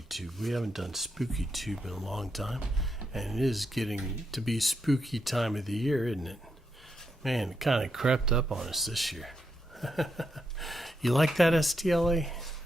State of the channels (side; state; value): both; normal; correlation 0.82